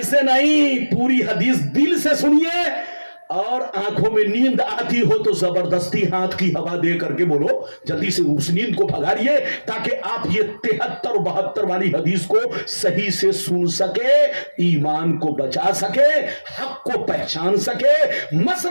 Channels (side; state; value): both; inverted; correlation -1.00